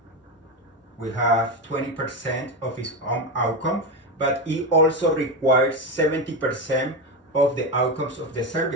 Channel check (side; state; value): both; normal; correlation 0.14